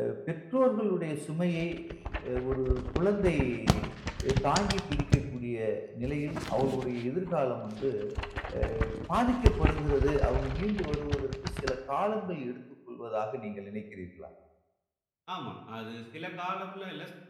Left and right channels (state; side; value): identical; both; correlation 1.00